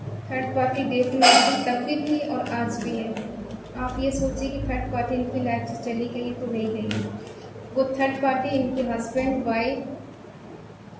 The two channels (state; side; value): identical; both; correlation 1.00